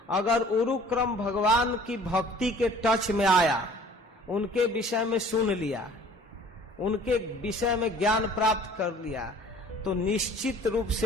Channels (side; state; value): both; normal; correlation 0.50